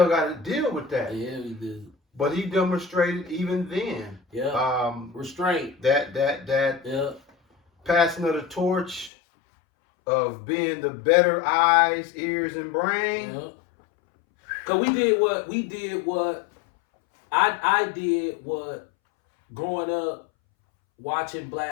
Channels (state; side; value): drops out; right; at 9.1 s